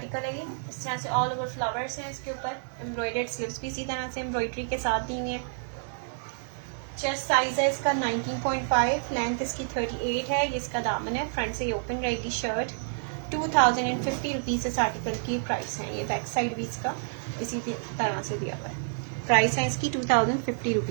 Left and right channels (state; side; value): silent; left; digital silence